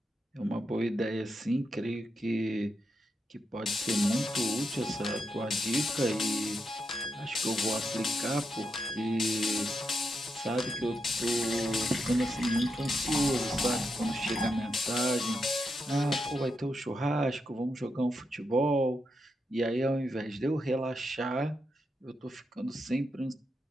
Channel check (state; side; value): normal; both; correlation 0.84